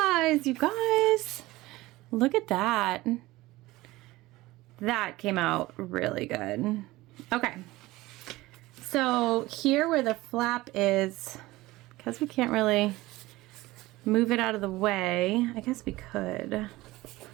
you guys, look at that. That came out really good. Okay, so here where the flap is, because we can't really move it out of the way, I guess we could.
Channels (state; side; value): quieter; left; 19.0 dB